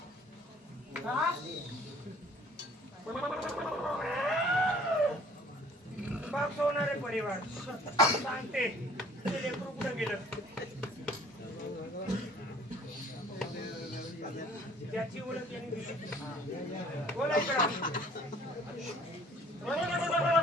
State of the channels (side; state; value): both; normal; correlation 0.54